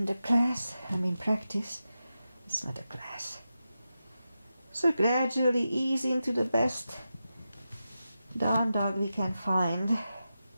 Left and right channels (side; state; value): both; inverted; correlation -0.91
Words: the class. Practice. It's not a class. So gradually ease into the best down dog we can find